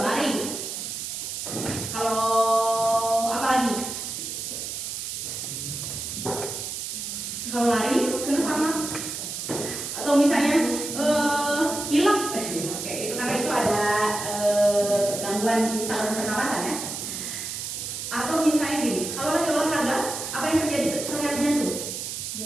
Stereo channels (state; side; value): noise; right; hiss, 6 dB below the sound